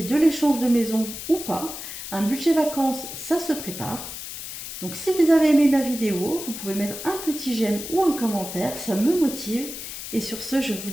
de l'échange de maison ou pas, un budget vacances, ça se prépare. Donc si vous avez aimé ma vidéo, vous pouvez mettre un petit j'aime ou un commentaire, ça me motive. Et sur ce, je vous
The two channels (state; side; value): noise; left; hiss, 9 dB below the sound